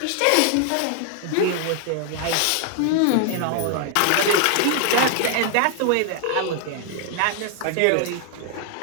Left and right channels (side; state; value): both; different; correlation 0.00